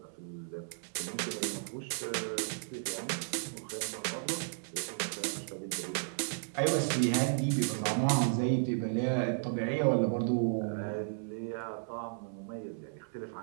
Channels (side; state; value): left; silent; 55 dB below the other